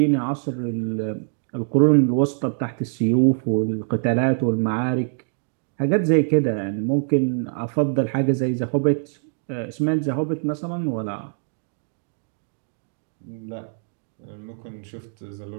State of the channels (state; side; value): silent; left; digital silence